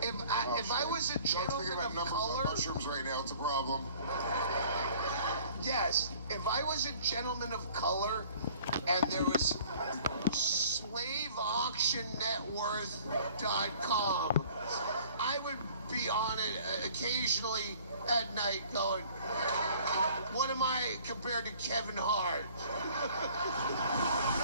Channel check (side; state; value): both; inverted; correlation -0.52